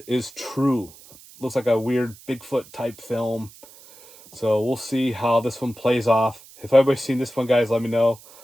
is True. Looks like a weird Bigfoot type film. So we'll see how this one plays off. If anybody's seen this one, guys, let me know.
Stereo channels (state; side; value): noise; right; hiss, 22 dB below the sound